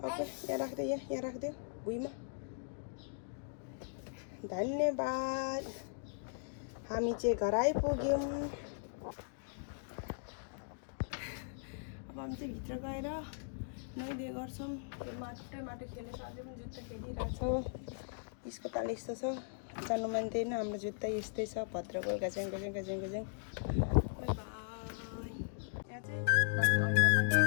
यहाँ राखिदेऊ यहाँ राखिदेऊ भुइँमा धन्यवाद हामी चाहिँ घर आइपुग्यौँ अब हामी चाहिँ भित्र गएर नुहाइधुवाइ गर्छौँ त्यो माटो खेलेर अझै पनि जुत्ता खेलिरहेछ यसको ताल यस्तो छ जानु मान्दैन हाम्रो जुत्ता यस्तै छ भद्रको गज्याङ गज्याङ गज्याङ गज्याङ बाई यहाँ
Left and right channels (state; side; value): silent; right; digital silence